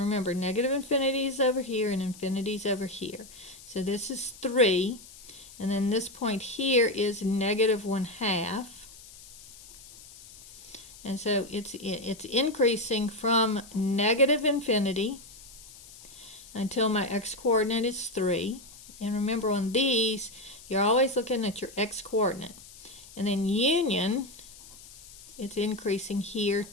negative infinity is over here and infinity is over here. So this is 3, and then this point here is negative 1/2. And so it's increasing from negative infinity until my x-coordinate is 3. And remember, on these, you're always looking at your x-coordinate. And then union, it's increasing here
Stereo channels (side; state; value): left; noise; hiss, 19 dB below the sound